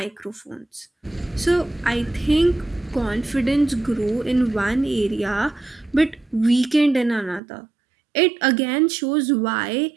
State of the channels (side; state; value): left; drops out; at 7.4 s